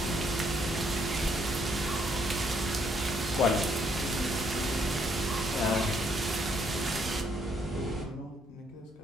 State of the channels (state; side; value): normal; both; correlation 0.70